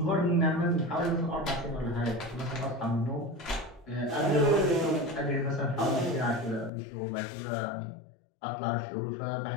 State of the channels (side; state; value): right; drops out; at 6.7 s